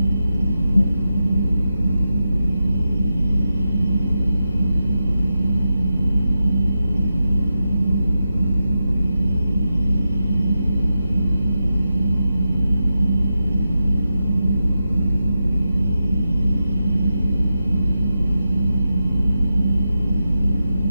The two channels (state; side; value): inverted; both; correlation -0.89